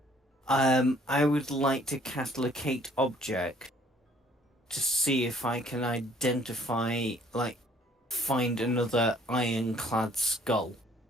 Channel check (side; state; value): both; normal; correlation 0.60